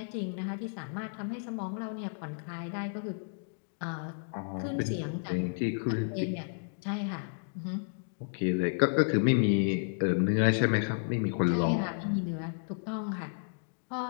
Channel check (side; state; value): right; silent; digital silence